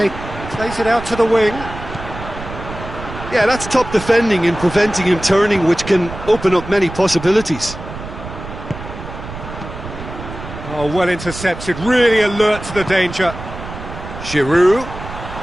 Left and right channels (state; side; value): noise; right; rumble, 11 dB below the sound